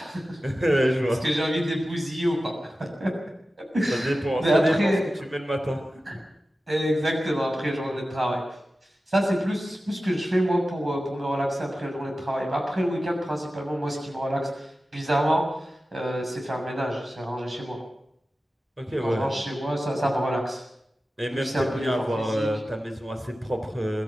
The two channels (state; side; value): normal; both; correlation 0.94